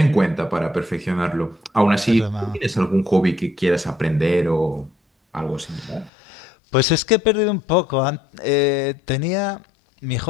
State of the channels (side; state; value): right; drops out; at 6.1 s